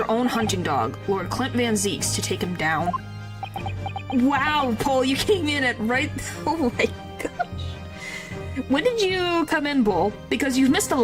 own hunting dog, Lord Clint Van Zieks, to take him down. Wow, Paul, you came in at right... Oh my gosh. When did you come in, Bull? Because you've missed a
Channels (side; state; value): both; identical; correlation 1.00